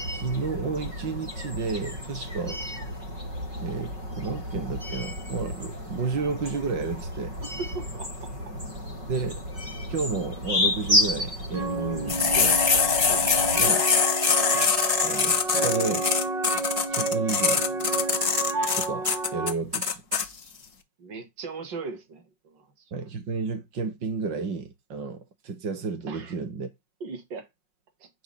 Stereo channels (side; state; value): left; late; 5.5 ms